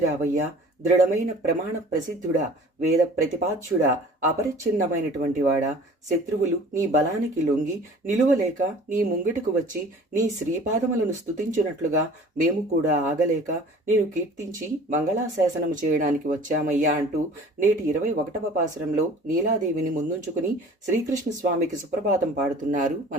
దృఢమైన ప్రమాణ ప్రసిద్ధుడా, వేద ప్రతిపాద్యుడా, అపరిచ్ఛిన్నమైనటువంటి వాడా, శత్రువులు నీ బలానికి లొంగి నిలువలేక నీ ముంగిటకు వచ్చి నీ శ్రీపాదములను స్తుతించినట్లుగా మేము కూడా ఆగలేక నేను కీర్తించి మంగళాశాసనము చేయడానికి వచ్చామయ్యా అంటూ నేటి 21వ పాసురంలో నీలాదేవిని ముందుంచుకుని శ్రీకృష్ణ స్వామికి సుప్రభాతం పాడుతున్నారు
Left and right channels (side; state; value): both; normal; correlation 0.47